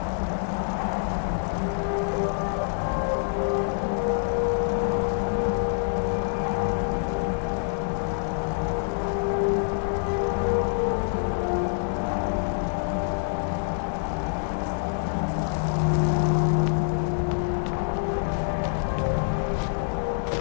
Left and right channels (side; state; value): right; silent; 56 dB below the other